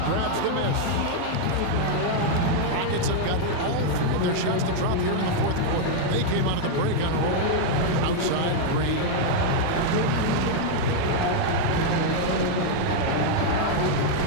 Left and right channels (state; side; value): different; both; correlation 0.00